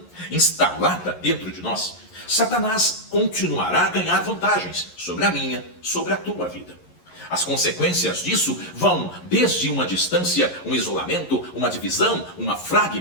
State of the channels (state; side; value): late; right; 11 ms